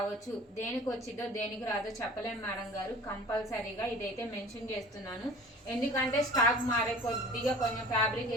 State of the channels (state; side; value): normal; both; correlation 0.43